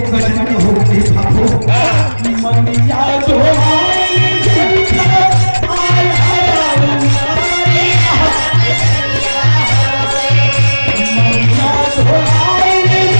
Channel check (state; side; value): inverted; both; correlation -1.00